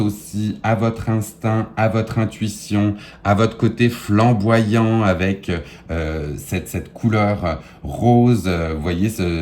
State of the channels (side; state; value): both; identical; correlation 1.00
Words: à votre instinct, à votre intuition, à votre côté flamboyant avec cette couleur rose. Vous voyez,